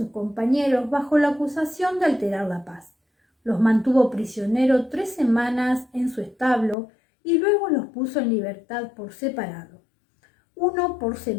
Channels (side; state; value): right; drops out; at 6.8 s